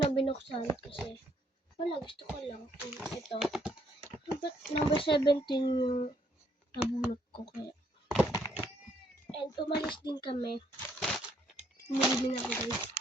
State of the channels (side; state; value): both; normal; correlation 0.69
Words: binuksan kasi wala, gusto ko lang. Ito. Number 17 yung nabunot ko kaya. And umalis din kami. Umili din ako guys.